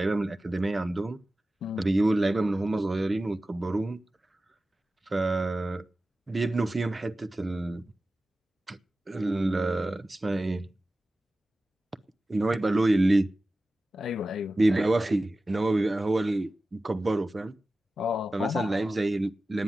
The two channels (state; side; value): normal; both; correlation 0.95